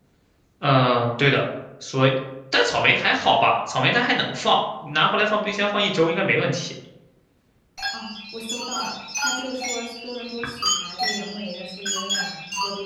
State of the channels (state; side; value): identical; both; correlation 1.00